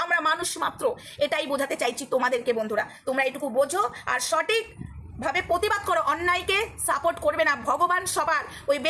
আমরা মানুষ মাত্র। এটাই বোঝাতে চাইছি তোমাদেরকে বন্ধুরা, তোমরা এটুকু বোঝো আর সঠিক ভাবে প্রতিবাদ করো, অন্যায়কে সাপোর্ট করবে না। ভগবান সবার, ওই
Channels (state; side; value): identical; both; correlation 1.00